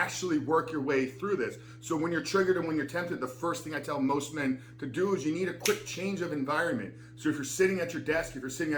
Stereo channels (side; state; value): both; identical; correlation 1.00